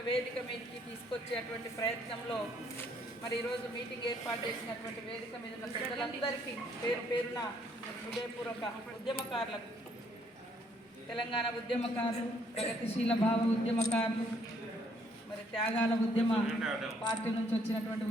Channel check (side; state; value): both; normal; correlation 0.67